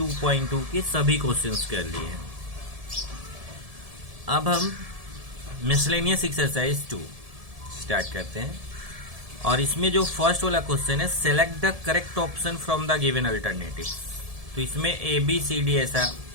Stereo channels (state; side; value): late; left; 1.7 ms